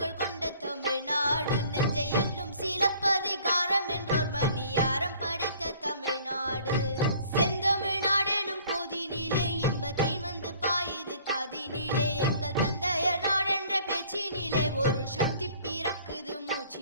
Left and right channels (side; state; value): both; inverted; correlation -0.54